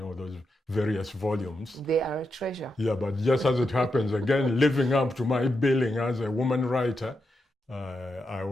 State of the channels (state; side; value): normal; both; correlation 0.85